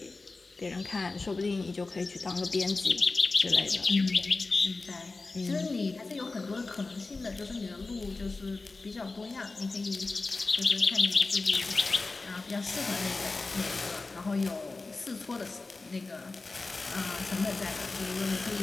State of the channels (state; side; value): quieter; right; 3.6 dB